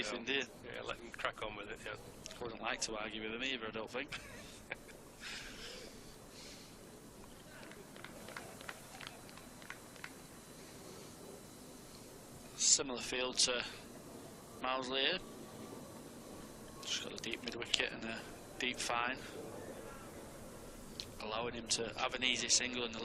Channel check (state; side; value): identical; both; correlation 1.00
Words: do you? Yeah, let him crack on with it, yeah. I wouldn't like to argue with him either, I don't think. Similar field to Mousley here. Just got a deep mid-wicket and a deep fine, allowing him to have an easy single on the